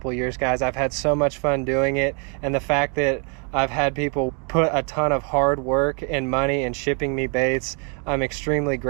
of years, guys. I've had so much fun doing it, and the fact that I've had people put a ton of hard work and money in shipping me baits, I'm extremely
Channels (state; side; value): quieter; left; 37.5 dB